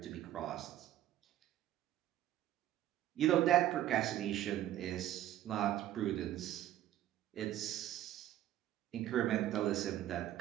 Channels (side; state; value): left; quieter; 12.8 dB